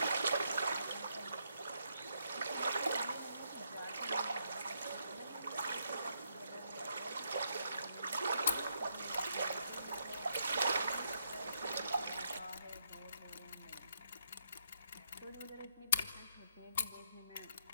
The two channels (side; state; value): both; inverted; correlation -0.77